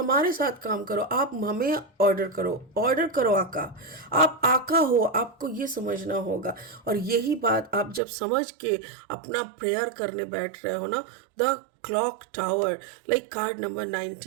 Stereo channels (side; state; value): left; drops out; at 8.0 s